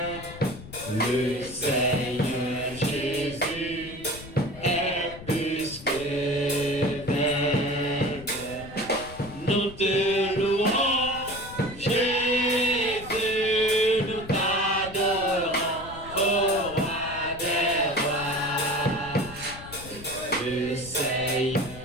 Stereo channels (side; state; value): left; noise; rumble, 15 dB below the sound